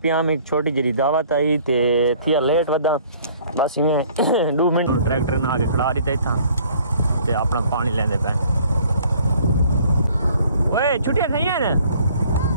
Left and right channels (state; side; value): inverted; both; correlation -0.56